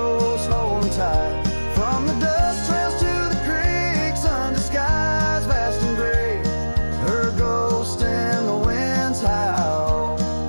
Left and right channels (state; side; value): inverted; both; correlation -1.00